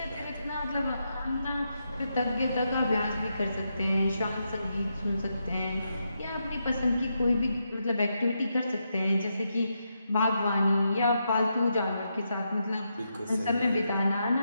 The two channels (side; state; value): both; inverted; correlation -0.83